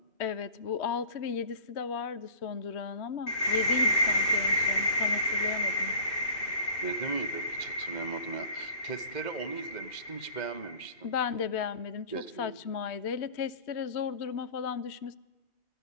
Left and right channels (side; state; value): right; late; 2.6 ms